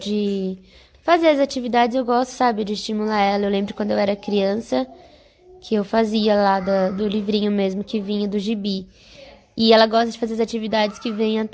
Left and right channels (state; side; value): identical; both; correlation 1.00